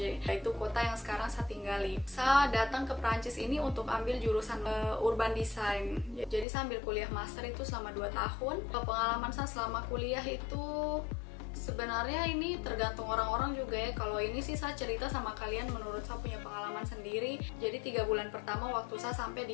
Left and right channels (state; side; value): drops out; right; at 6.5 s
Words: yaitu kota yang sekarang saya tinggali. Saya datang ke Prancis ini untuk ambil jurusan urban design. Jadi saya ambil kuliah master itu selama 2 tahun. Pengalaman saya selama kuliah itu sebenarnya ini tergantung orang-orang juga ya. Kalau ini sih saya cerita sama kalian menurut saya punya pengalaman sendiri. Jadi 3 bulan pertama waktu saya sampai